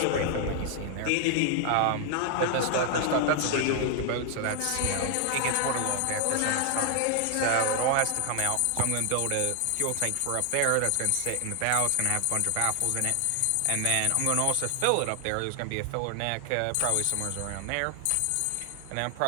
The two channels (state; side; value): different; both; correlation 0.00